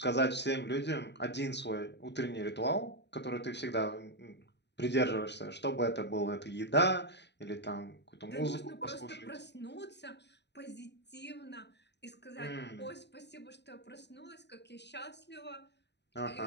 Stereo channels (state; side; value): late; right; 0.50 ms